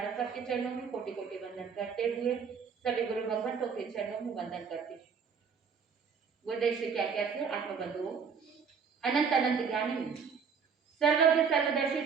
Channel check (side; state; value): left; quieter; 6.2 dB